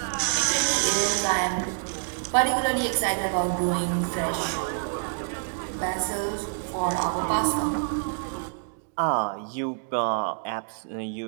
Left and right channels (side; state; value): left; silent; digital silence